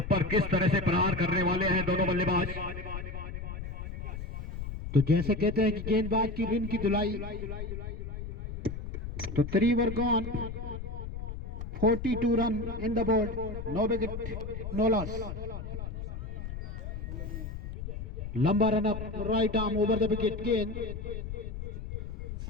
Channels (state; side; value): noise; left; rumble, 7 dB below the sound